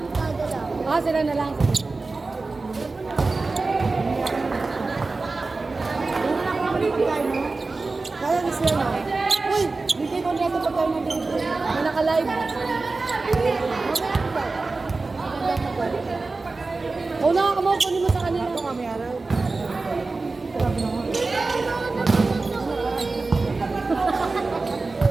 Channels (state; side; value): quieter; left; 3.7 dB